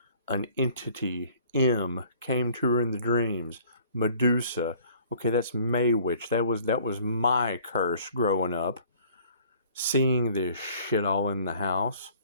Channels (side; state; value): both; inverted; correlation -0.55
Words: an entity. M came to her in the dreams. Medusa. Okay, that's May Witch. That was my curse growing up. Seeing this shit all in the house.